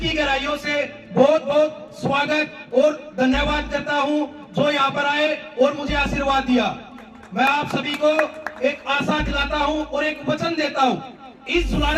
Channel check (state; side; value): identical; both; correlation 1.00